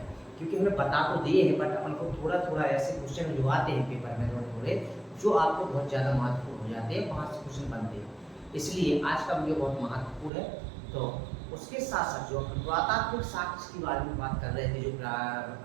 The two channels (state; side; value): drops out; left; at 10.3 s